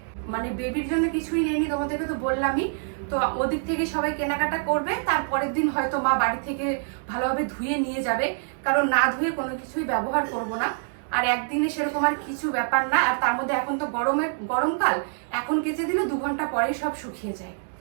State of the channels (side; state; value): left; silent; digital silence